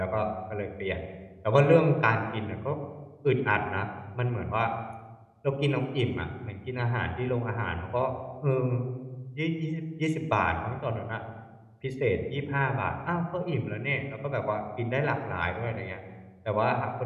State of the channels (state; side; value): identical; both; correlation 1.00